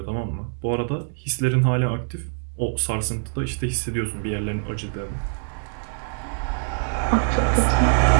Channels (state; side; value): silent; left; 63 dB below the other